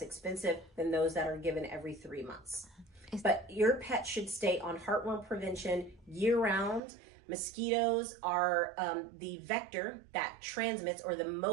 expensive than those that are given every 3 months. But your pet should stay on heartworm prevention year round. Mosquitoes are the vector that transmits, or the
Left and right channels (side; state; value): left; drops out; at 6.8 s